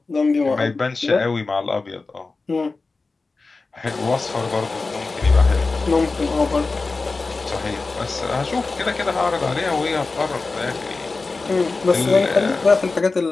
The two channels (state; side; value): quieter; right; 3.8 dB